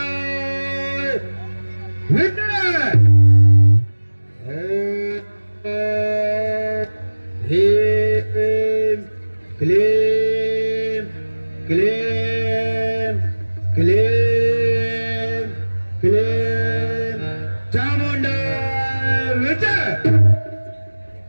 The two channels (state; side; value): inverted; both; correlation -1.00